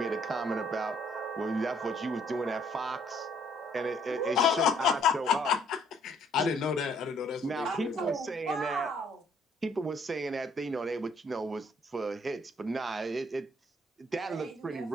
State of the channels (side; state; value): both; normal; correlation 0.64